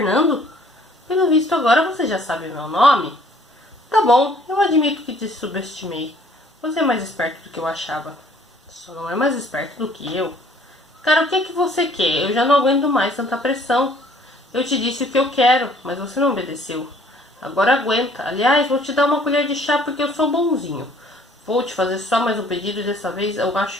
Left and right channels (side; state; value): both; normal; correlation 0.58